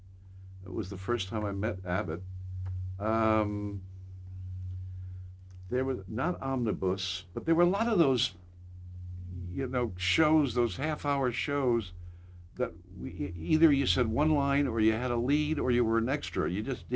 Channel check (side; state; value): both; identical; correlation 1.00